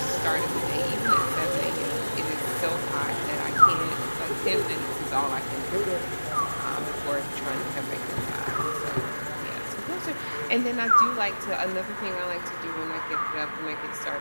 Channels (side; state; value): both; inverted; correlation -1.00